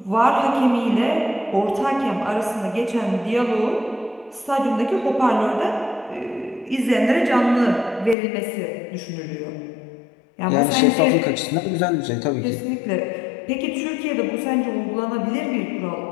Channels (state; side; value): drops out; right; at 8.2 s